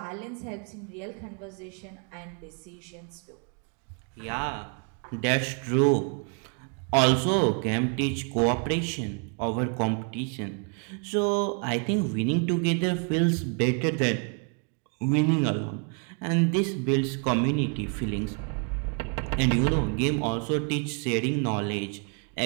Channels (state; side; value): quieter; left; 39.5 dB